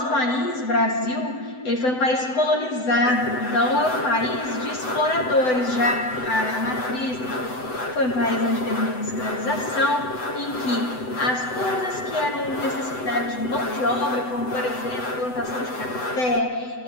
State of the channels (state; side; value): late; right; 7.9 ms